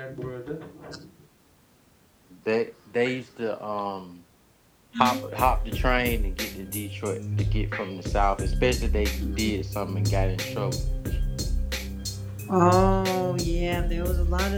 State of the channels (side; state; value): both; identical; correlation 1.00